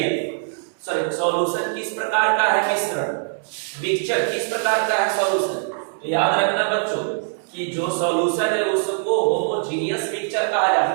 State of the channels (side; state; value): left; silent; digital silence